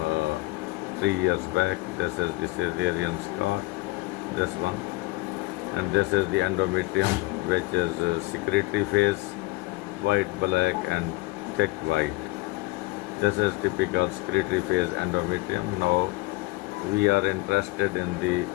3 years back. This is the cesarean scar, this one. And this is the endometrium, which is secretory phase, white, black and thick white. This is typical secretory phase endometrium. Now we are interested in the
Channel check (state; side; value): quieter; right; 22.4 dB